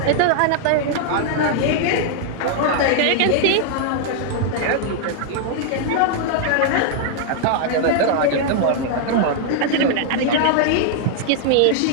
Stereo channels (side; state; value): both; different; correlation 0.00